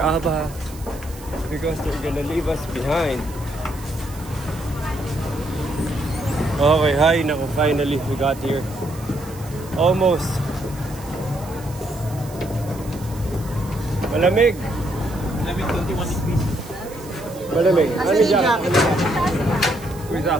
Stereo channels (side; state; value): right; noise; hiss, 19 dB below the sound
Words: because they're gonna leave us behind. Okay, hi, naku, finally we got here. Almost. Malamig. 21 degrees. Malamig. Ano jacket? Where's